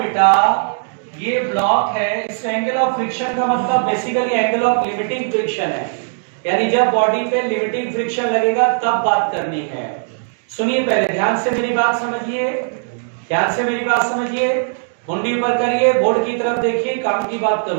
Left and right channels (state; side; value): silent; left; digital silence